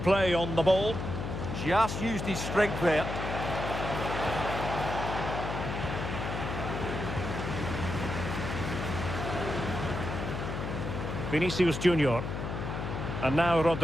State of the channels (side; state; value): left; noise; hum, 4 dB below the sound